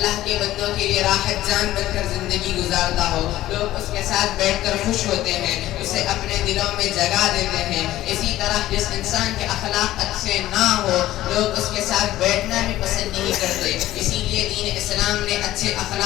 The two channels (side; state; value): right; quieter; 14.8 dB